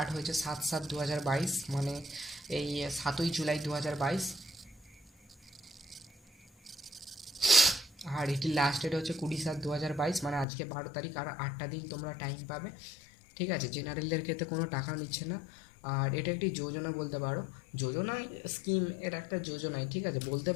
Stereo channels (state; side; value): drops out; right; at 10.5 s